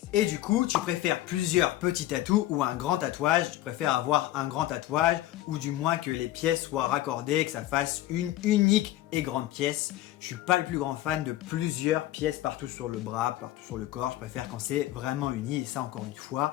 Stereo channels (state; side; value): quieter; right; 14.7 dB